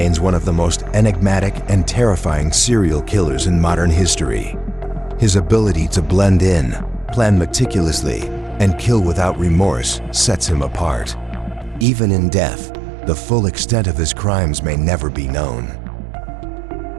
one of the most enigmatic and terrifying serial killers in modern history. His ability to blend in, plan meticulously, and kill without remorse sets him apart. Even in death, the full extent of his crimes may never be known.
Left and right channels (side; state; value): left; drops out; at 11.9 s